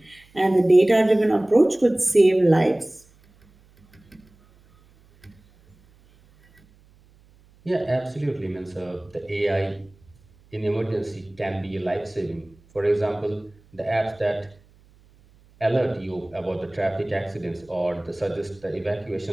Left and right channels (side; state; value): right; noise; hum, 30 dB below the sound